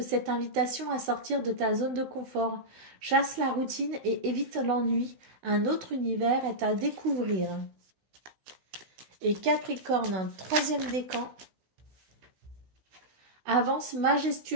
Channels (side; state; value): left; late; 16 ms